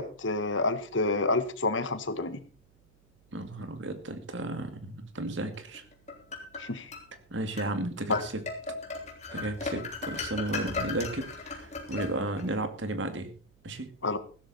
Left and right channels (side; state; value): right; noise; hum, 30 dB below the sound